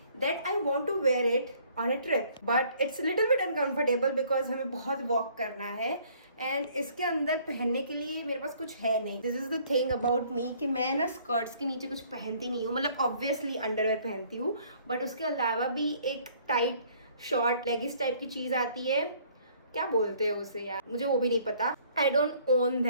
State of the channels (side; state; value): both; inverted; correlation -0.59